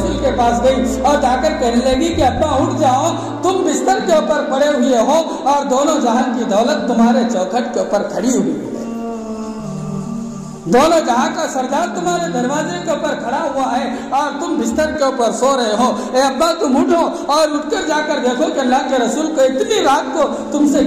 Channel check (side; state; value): both; identical; correlation 1.00